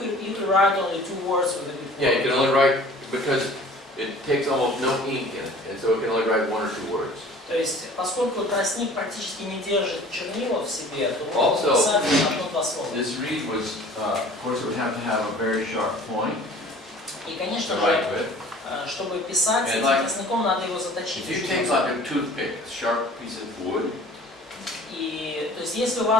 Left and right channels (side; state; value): both; normal; correlation 0.47